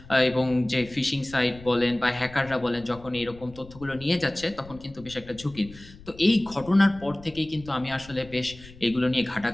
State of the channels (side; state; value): left; noise; rumble, 19 dB below the sound